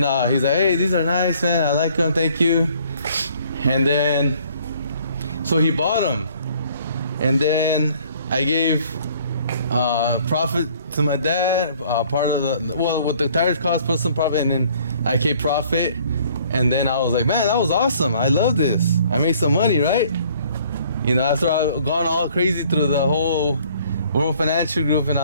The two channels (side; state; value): both; inverted; correlation -0.58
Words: he's like, hey, these are nice, man. I like them, thank you. And then, so he bought them. And then I gave profit to my dad, part of the, well, what the tires cost, put some profit, and then I kept profit. And then I was like, man, that was awesome. I love this. I made some money, right? You know, after I've gone all crazy through the whole World Financial Group and